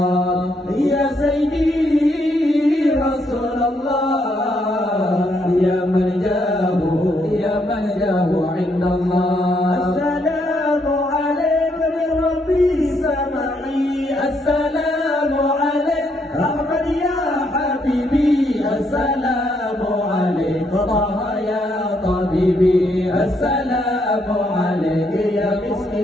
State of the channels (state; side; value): normal; both; correlation 0.74